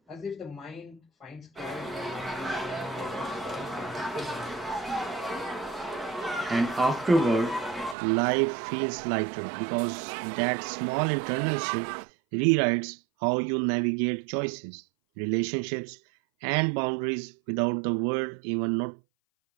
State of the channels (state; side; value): drops out; left; at 8.0 s